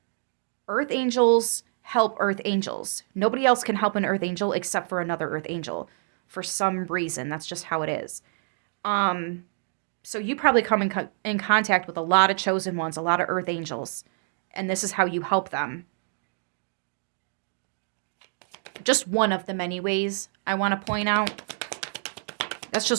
Earth angels help earth angels. Nobody else can help an earth angel except for another earth angel. For some reason, that's just how it is. So you probably come in contact with a lot of chosen ones, a lot of earth angels. And this is how you help them. Just one of the many ways I want to point out. That's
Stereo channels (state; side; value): silent; left; digital silence